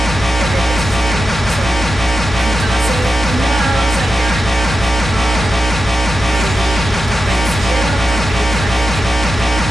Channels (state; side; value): normal; both; correlation 0.90